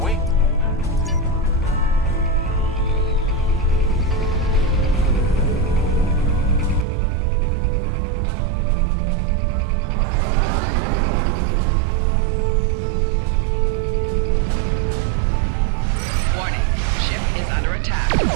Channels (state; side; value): drops out; left; at 6.9 s